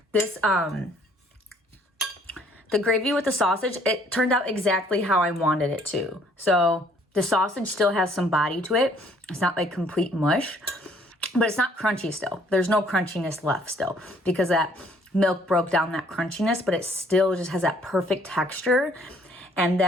This, the gravy with the sausage, it turned out exactly how I wanted it to. So the sausage still has some body to it. It's not like complete mush, but it's not crunchy still. There's no crunchiness left still because that milk broke down that crunchiness, but it still just has that perfect texture. And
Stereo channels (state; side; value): normal; both; correlation 0.61